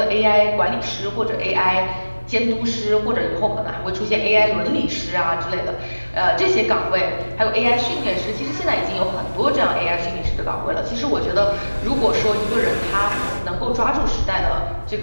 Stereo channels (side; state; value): both; inverted; correlation -1.00